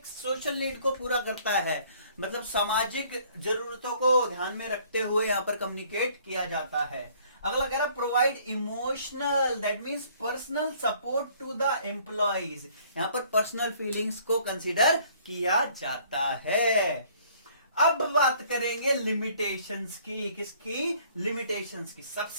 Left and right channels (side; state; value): both; inverted; correlation -0.58